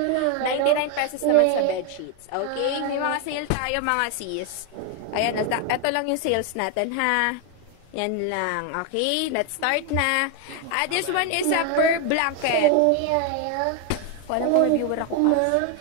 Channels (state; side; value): different; both; correlation 0.01